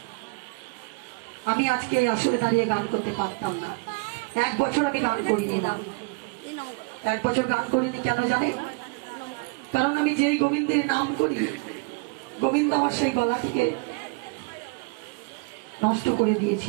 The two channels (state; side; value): quieter; left; 28.9 dB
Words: আমি আজকে এই আসরে দাঁড়িয়ে গান করতে পারতাম না। 1 বছর আমি গান করিনি না, 1 বছর গান করিনি। কেন জানেন? কারণ আমি যেই গোবিন্দের নাম করি, গোবিন্দ আমার সেই গলাটিকে নষ্ট করে